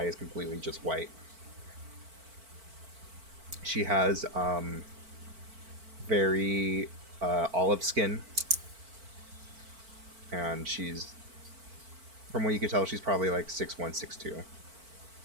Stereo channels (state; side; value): late; left; 4.5 ms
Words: is completely just white. She has very olive skin, and from what you can tell, she's probably like 6'1", 6'2".